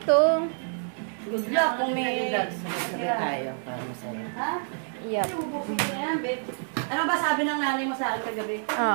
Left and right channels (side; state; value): left; silent; digital silence